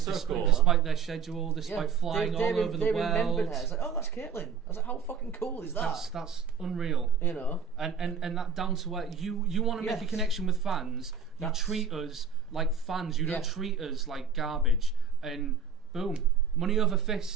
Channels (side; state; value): left; quieter; 5.9 dB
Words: so despite, cool. despite their schedule, despite flying all over the they world. remembered her. It's like, oh, that's Caitlin. I was like, how fucking cool is that? That's unreal. You know. And that down to where you want to make a connection with fans. You treat us like fans. You don't treat us like garbage. And boom, money over